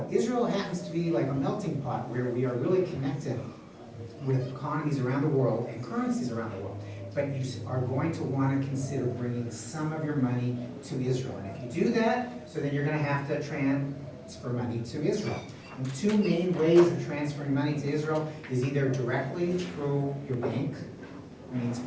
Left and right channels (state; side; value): identical; both; correlation 1.00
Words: Israel happens to be like a melting pot where we are really connected with economies around the world and currencies around the world. But you are going to want to consider bringing some of your money to Israel. And if you do that, so then you're going to have to transfer money to Israel. And two main ways of transferring money to Israel is either directly through your bank, means